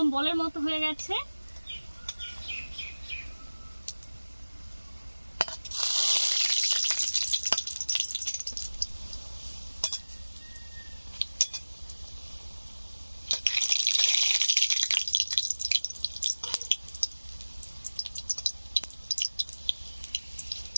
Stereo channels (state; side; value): inverted; both; correlation -1.00